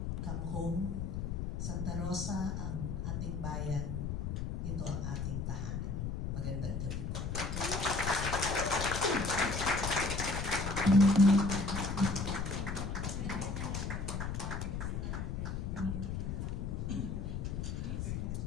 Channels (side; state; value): left; noise; rumble, 2 dB below the sound